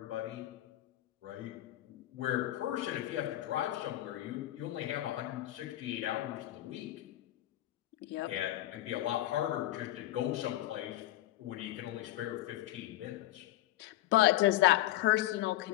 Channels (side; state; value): right; quieter; 15.1 dB